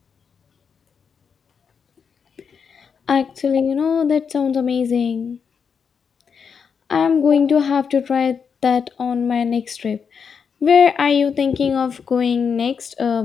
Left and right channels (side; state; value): right; quieter; 6.4 dB